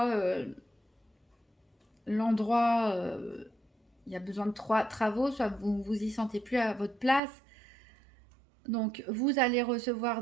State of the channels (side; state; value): left; drops out; at 7.2 s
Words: l'endroit, il y a besoin de travaux, soit vous vous y sentez plus à votre place. Donc, vous allez